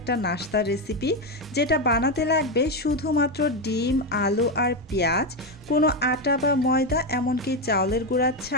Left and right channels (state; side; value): normal; both; correlation 0.09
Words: নাস্তার রেসিপি, যেটা বানাতে লাগবে শুধুমাত্র ডিম, আলু আর পেঁয়াজ, কোনো আটা বা ময়দা এমনকি চাউলের গুঁড়া